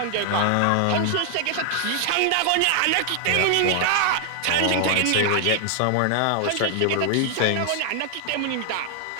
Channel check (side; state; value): both; different; correlation 0.00